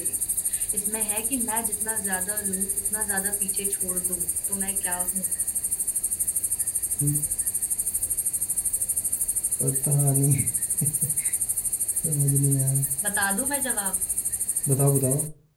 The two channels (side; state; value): both; identical; correlation 1.00